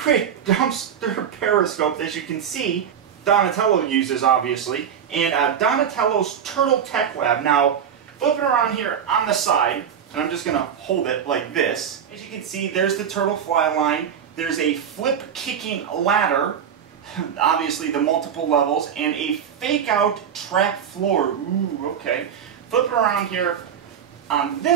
dumpster periscope, as you can see, Donatello uses, obviously, and Donatello's Turtle Tech Lab. Now, flipping around here on the side, and I'm just going to hold it like this. As you can see, there's the turtle fly line. There's a flip-kicking ladder, obviously the multiple levels, and a fake-out trap floor. Ooh, okay. Flipping around here on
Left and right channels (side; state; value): left; quieter; 8.3 dB